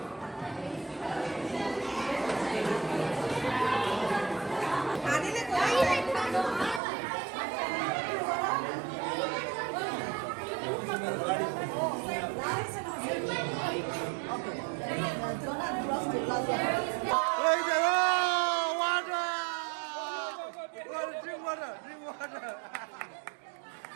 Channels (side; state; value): left; drops out; at 6.8 s